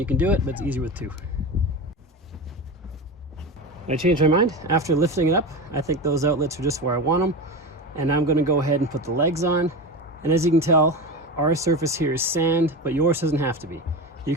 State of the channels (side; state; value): both; normal; correlation 0.24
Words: can do it, but it's easier with two. I changed my mind after lifting it up. I think those outlets are just where I want them. And now I'm going to go ahead and put the legs on. And as you can tell, our surface here is sand, but yours doesn't have to be. You